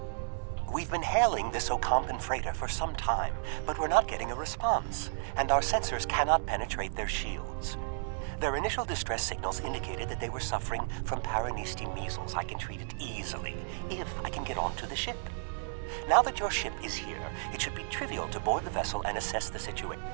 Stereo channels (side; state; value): left; silent; digital silence